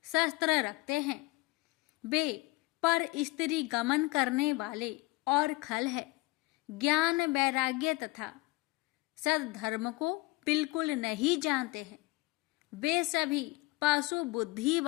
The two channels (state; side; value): quieter; right; 22.1 dB